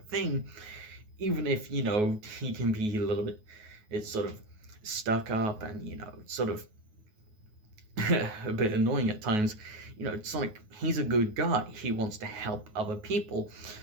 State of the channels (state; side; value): late; left; 9.4 ms